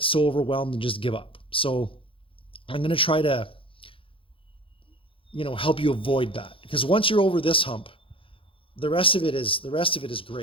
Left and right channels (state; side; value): late; right; 0.26 ms